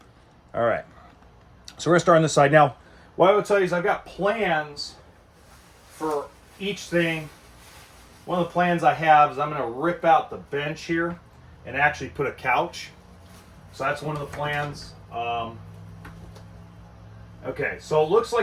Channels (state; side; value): identical; both; correlation 1.00